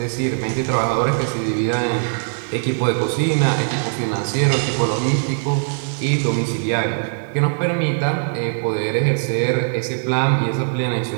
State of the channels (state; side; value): silent; left; digital silence